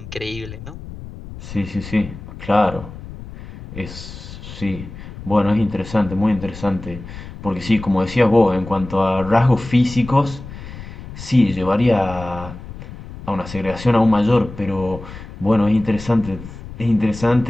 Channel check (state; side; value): noise; left; rumble, 13 dB below the sound